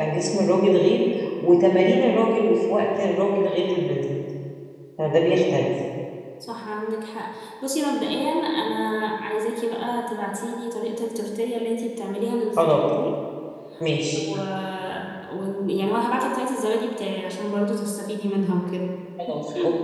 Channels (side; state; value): both; identical; correlation 1.00